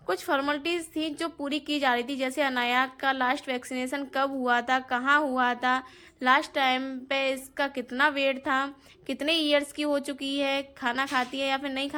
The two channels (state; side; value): identical; both; correlation 1.00